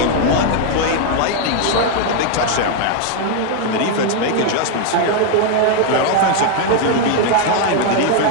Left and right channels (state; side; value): different; both; correlation 0.00